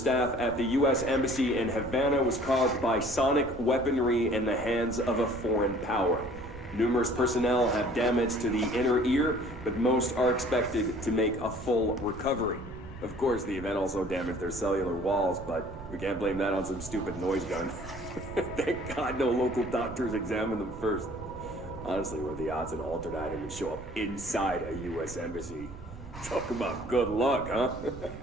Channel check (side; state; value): right; noise; rumble, 14 dB below the sound